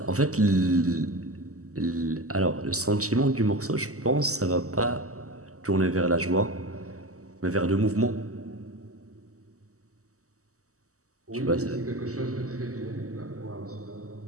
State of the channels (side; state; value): left; late; 0.66 ms